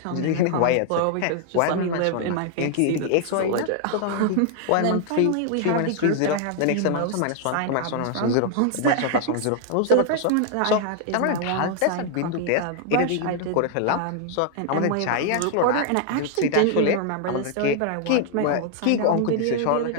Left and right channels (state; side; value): different; both; correlation 0.00